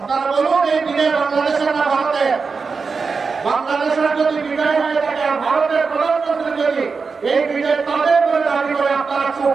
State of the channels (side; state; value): left; quieter; 4.9 dB